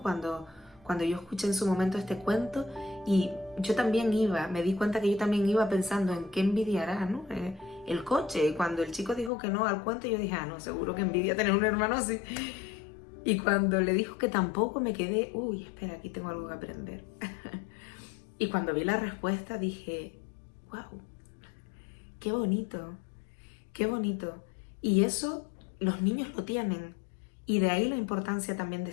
Cuando yo escuché en su momento este cuento y yo también me di cuenta que yo también iba pensando en qué envidiará, ¿no? El coche. Y cuando el chico dijo que no al cuento, yo dije, no, seguro que envidia tener un hermano así. Y cuando le dijo que tampoco, me quedé, espera, aquí tengo algo que aprender. Y cuando vi la respuesta dije, wow, qué bonito, qué bonito. Y eso los niños lo tienen. Y de ahí la importancia también de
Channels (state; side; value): drops out; right; at 9.3 s